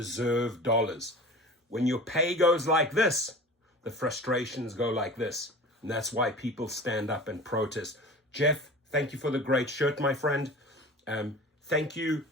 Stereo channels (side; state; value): both; normal; correlation 0.37